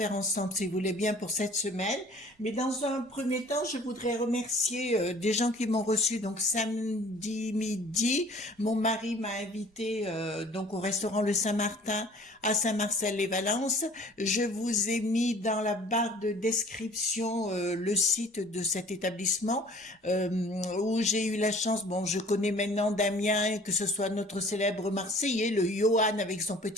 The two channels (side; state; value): both; normal; correlation 0.50